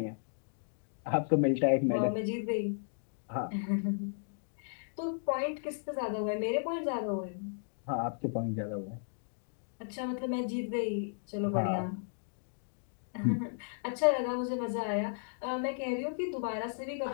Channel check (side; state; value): right; silent; digital silence